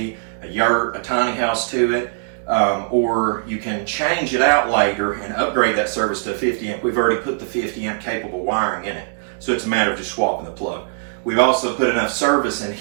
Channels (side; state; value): left; silent; digital silence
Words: a yurt, a tiny house to it, or you can change it out later and upgrade that service to 50 amp. We've already put the 50 amp capable wiring in it, so it's a matter of just swapping the plug. We've also put enough service in